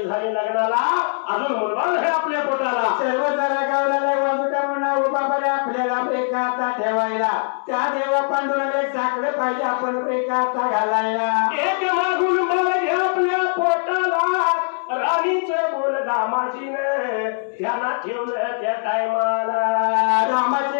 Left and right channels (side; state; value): right; silent; 65 dB below the other